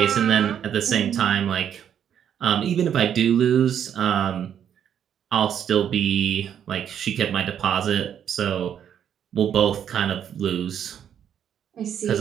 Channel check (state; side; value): quieter; left; 9.1 dB